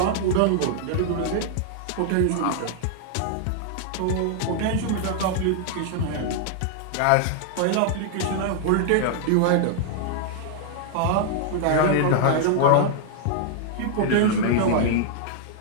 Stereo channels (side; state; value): both; different; correlation 0.00